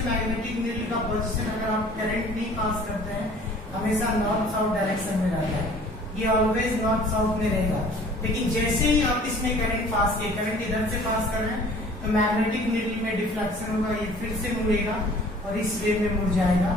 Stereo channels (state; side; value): normal; both; correlation 0.50